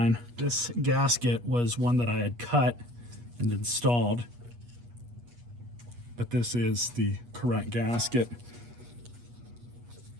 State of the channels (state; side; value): late; left; 8.3 ms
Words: This gasket was one that I had cut and installed, but this is the correct gasket.